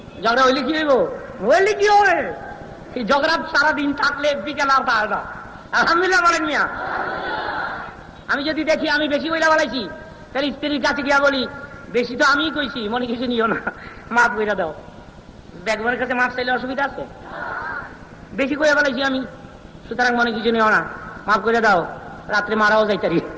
ঝগড়া হইলে কি হইব? হইলে কি হবে? এই ঝগড়া সারাদিন থাকলে বিকেল আর পায় না। আলহামদুলিল্লাহ বলেন মিয়া। আমি যদি দেখি আমি বেশি বইলা বলাইছি, তাহলে স্ত্রীর কাছে গিয়া বলি, বেশি তো আমিই কইছি, মনে কিছু নিও না, মাফ কইরা দাও। বেগমের কাছে মাফ চাইলে অসুবিধা আছে? বেশি কইয়া বলাইছি আমি, সুতরাং মনে কিছু নিও না, মাফ করে দাও, রাত্রে মারাও যাইতারি।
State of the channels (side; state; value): both; identical; correlation 1.00